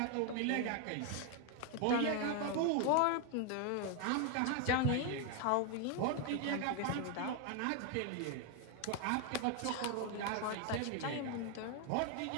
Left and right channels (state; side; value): different; both; correlation 0.01